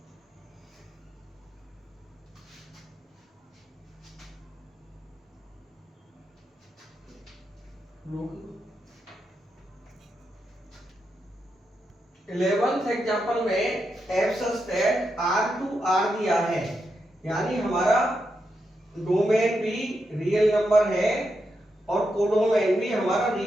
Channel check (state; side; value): normal; both; correlation 0.85